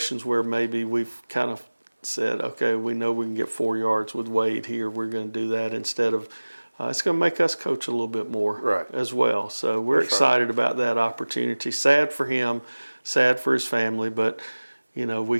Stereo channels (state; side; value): inverted; both; correlation -1.00